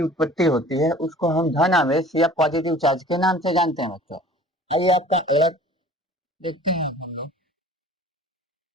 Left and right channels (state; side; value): normal; both; correlation 0.47